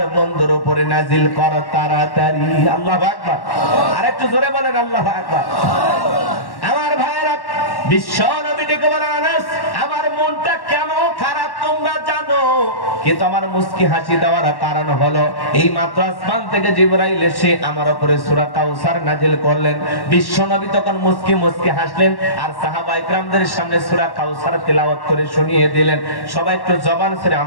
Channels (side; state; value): right; late; 1.1 ms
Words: বন্ধুর উপরে নাজিল কর তাড়াতাড়ি। আল্লাহু আকবার। আরেকটু জোরে বলেন আল্লাহু আকবার। আমার ভাইরা, বিশ্ব নবী ডেকে বলেন, আনাস, আমার মনটা কেন খারাপ তোমরা জানো, কিন্তু আমার মুস্কি হাসি দেওয়ার কারণ হলো এই মাত্র আসমান থেকে জিবরাইল এসে আমার উপরে সূরা কাউসার নাজিল করলেন। বিশ্ব নবী তখন মুস্কি মুস্কি হাসলেন আর সাহাবায়ে কেরামদের সামনে সূরা কাউসার তেলাওয়াত করে শুনিয়ে দিলেন। সবাই একটু জবান ছেড়ে